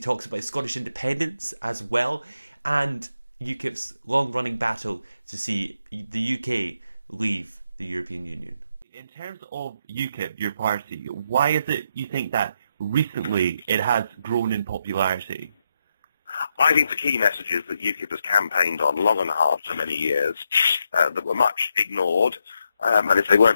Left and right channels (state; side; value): inverted; both; correlation -0.81